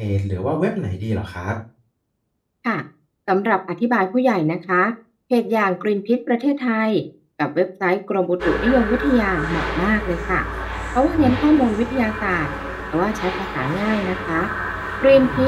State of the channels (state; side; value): identical; both; correlation 1.00